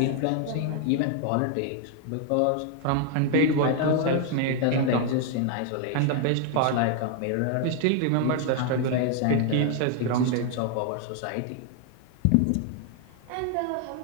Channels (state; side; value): different; both; correlation 0.00